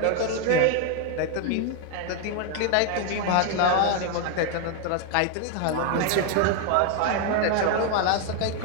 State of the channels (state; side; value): different; both; correlation 0.01